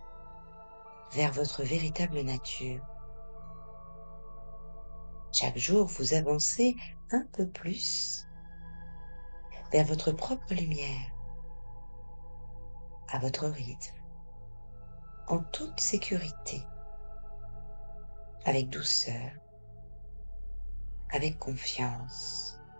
vers votre véritable nature. Chaque jour, vous avancez un peu plus vers votre propre lumière, à votre rythme, en toute sécurité, avec douceur, avec confiance.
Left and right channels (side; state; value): both; inverted; correlation -1.00